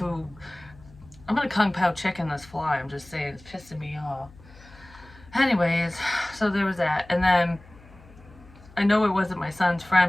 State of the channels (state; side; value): noise; left; hum, 23 dB below the sound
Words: pao chicken this fly. I'm just saying, it's pissing me off. Anyways, so there was that. And then I know it wasn't my son's